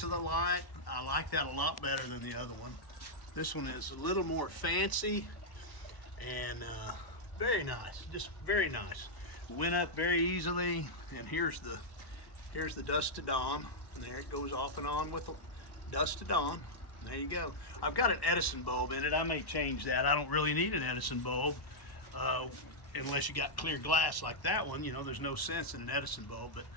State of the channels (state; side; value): late; right; 1.1 ms